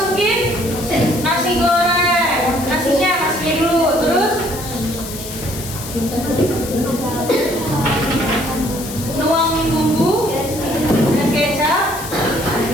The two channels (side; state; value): left; noise; hiss, 11 dB below the sound